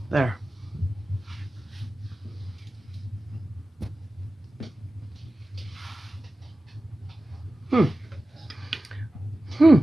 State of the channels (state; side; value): normal; both; correlation 0.95